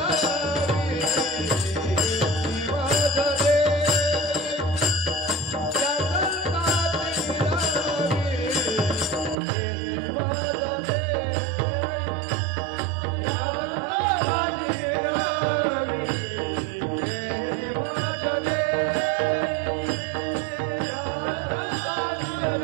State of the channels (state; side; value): drops out; left; at 9.3 s